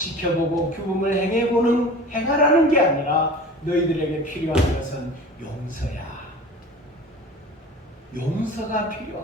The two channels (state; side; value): normal; both; correlation 0.38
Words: 규범을 행하라는 게 아니라 너희들에게 필요한 것은 용서야. 용서가 필요한